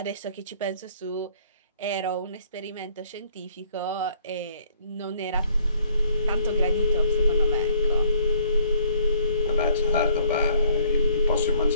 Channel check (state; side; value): inverted; both; correlation -0.62